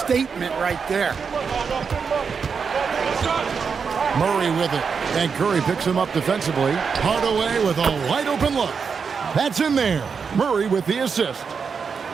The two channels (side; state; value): left; quieter; 5.9 dB